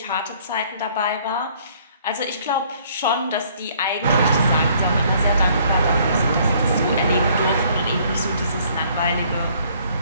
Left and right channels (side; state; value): both; inverted; correlation -0.61